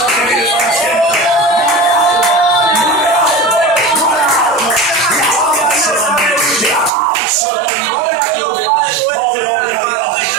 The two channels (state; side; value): drops out; left; at 6.9 s